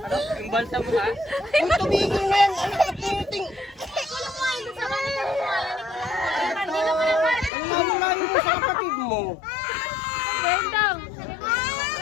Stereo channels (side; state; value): right; drops out; at 7.5 s